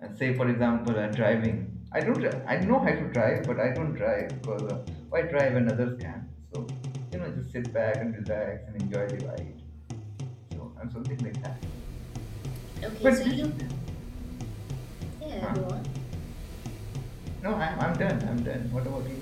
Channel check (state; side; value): identical; both; correlation 1.00